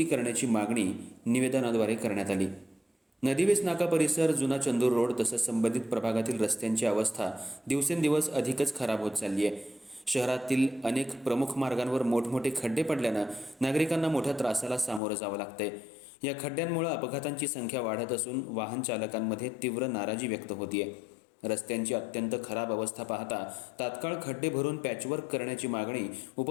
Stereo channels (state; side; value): drops out; right; at 15.0 s